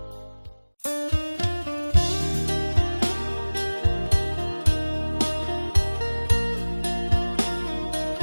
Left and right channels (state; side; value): inverted; both; correlation -1.00